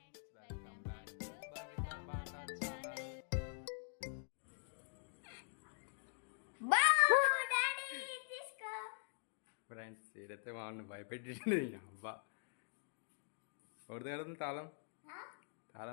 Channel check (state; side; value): silent; right; digital silence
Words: welcome back to Bhavita Bata channel. Friends ఏదైతే వాళ్ళని భయపెట్టింది అబ్బా ఎవరిది కడుతుంది తాళం